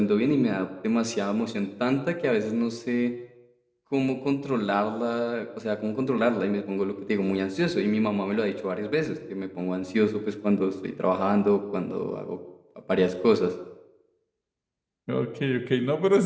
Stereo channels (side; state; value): both; identical; correlation 1.00